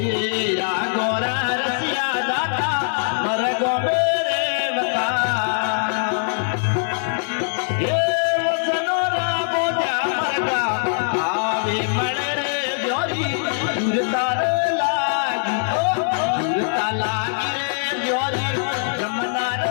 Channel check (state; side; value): silent; right; 64 dB below the other